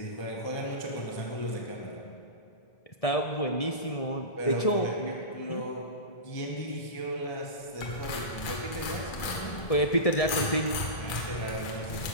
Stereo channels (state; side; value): late; right; 1.7 ms